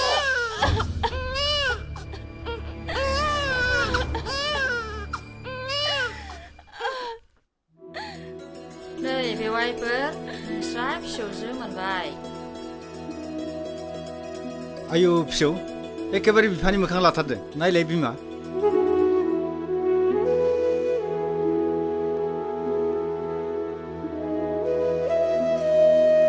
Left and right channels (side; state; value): both; identical; correlation 1.00